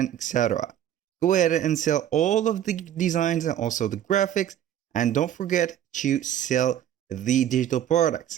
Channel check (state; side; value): quieter; left; 10.9 dB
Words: etc. Go ahead and sell all of the designs and also the graphics, and don't forget to sell the digital